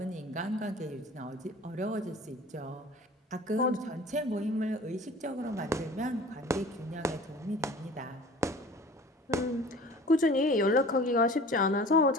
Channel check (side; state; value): both; normal; correlation 0.44